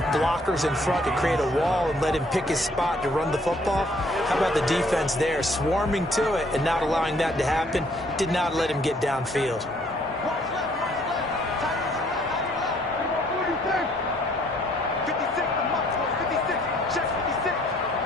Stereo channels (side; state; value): both; normal; correlation 0.63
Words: blockers in front to create a wall and let him pick his spot to run the football. How about the defense there, swarming to it and not allowing that to happen? Did not let him get downfield.